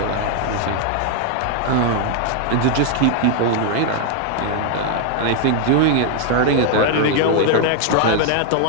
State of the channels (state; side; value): different; both; correlation 0.00